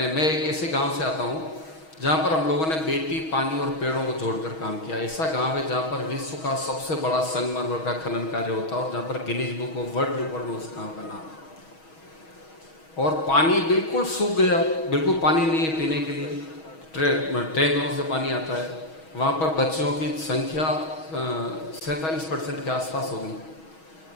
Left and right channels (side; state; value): right; late; 6.3 ms